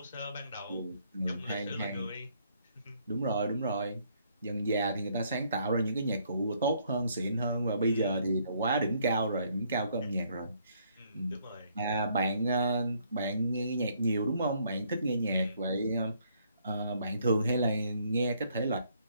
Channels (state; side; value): inverted; both; correlation -0.68